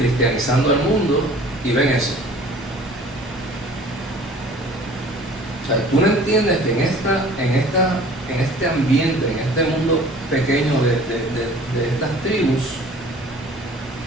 el mundo y ven eso? O sea, tú no entiendes que en este ambiente, en este mundo pequeño de estas tribus,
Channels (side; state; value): both; normal; correlation 0.48